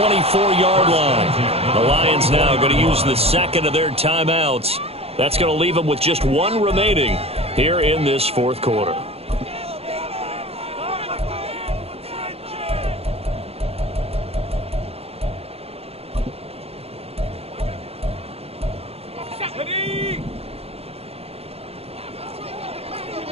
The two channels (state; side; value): late; left; 0.29 ms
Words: line. The Lions now going to use the 2nd of their timeouts. That's going to leave them with just 1 remaining here in this 4th quarter.